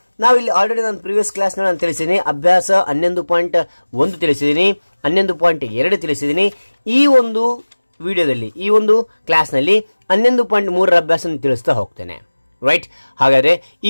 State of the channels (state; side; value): inverted; both; correlation -1.00